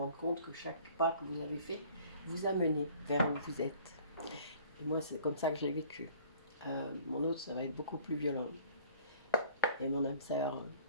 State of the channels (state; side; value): inverted; both; correlation -0.52